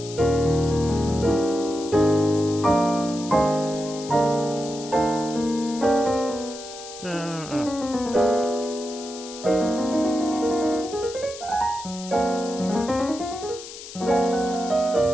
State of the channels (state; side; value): noise; left; hiss, 14 dB below the sound